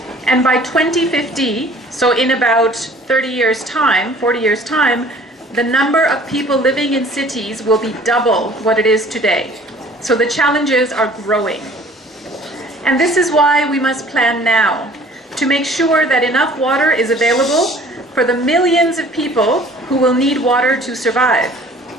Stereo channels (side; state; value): both; normal; correlation 0.51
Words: And by 2050, so in about 30 years' time, 40 years' time, the number of people living in cities will be double what it is today. So the challenges are growing. And this is why we must plan now, to make sure that enough water is available for the millions of people who will need water to survive.